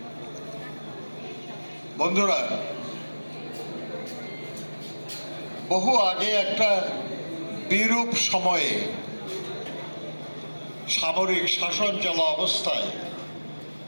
বন্ধুরা, বহু আগে একটা বিরূপ সময়ে সামরিক শাসন চলা অবস্থায়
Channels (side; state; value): both; inverted; correlation -1.00